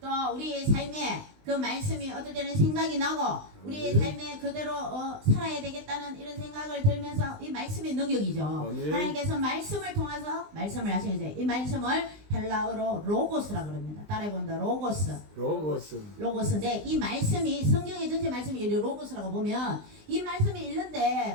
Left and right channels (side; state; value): left; late; 20 ms